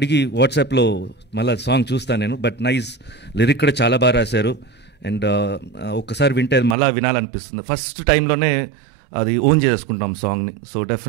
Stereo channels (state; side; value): drops out; left; at 6.8 s